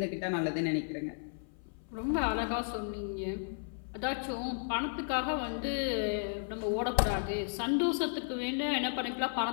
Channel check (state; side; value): silent; right; 55 dB below the other